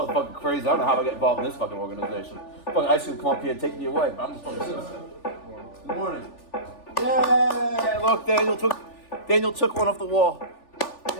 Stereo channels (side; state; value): right; late; 3.4 ms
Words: crazy. I don't know how I get involved in this fucking organization. Fucking ICE can come up here and take me away, but I'm just fucking citizen. Good morning. Yay! Look, Daniel took one off the wall.